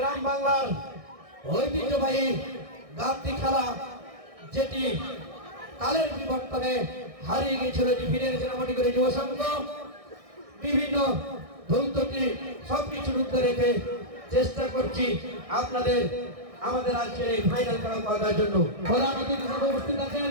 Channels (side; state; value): left; late; 1.6 ms